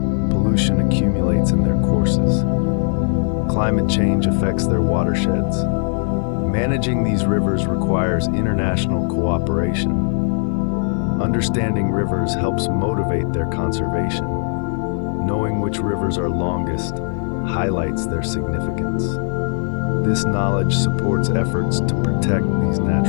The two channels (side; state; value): right; silent; 60 dB below the other